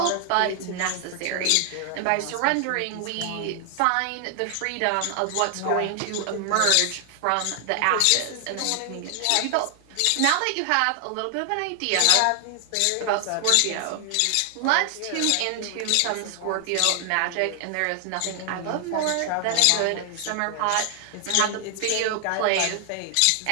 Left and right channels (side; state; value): both; different; correlation 0.00